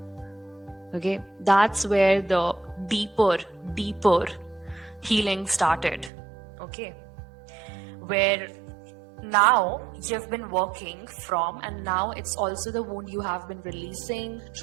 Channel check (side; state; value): left; drops out; at 6.1 s